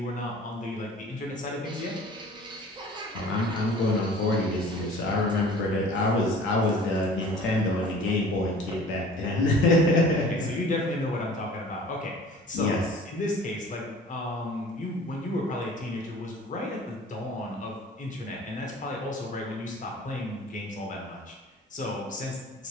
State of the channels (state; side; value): normal; both; correlation 0.46